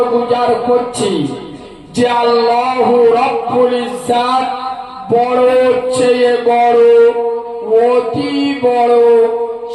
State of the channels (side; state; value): both; identical; correlation 1.00